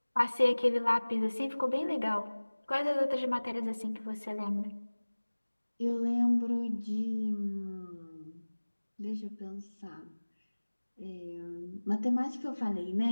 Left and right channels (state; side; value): inverted; both; correlation -1.00